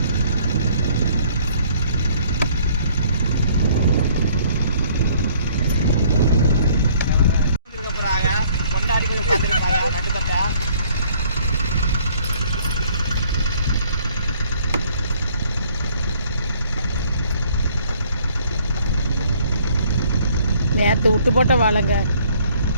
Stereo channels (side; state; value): both; inverted; correlation -0.60